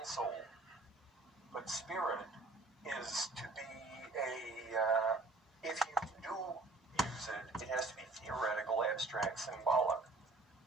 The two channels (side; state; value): left; quieter; 3.3 dB